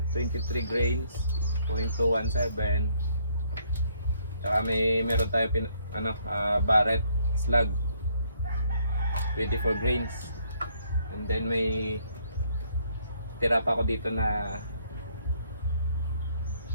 23 grains, 0.217. Tsaka meron tayo Barrett slug 24 grains, and then may tira pa ako dito na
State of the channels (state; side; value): inverted; both; correlation -0.67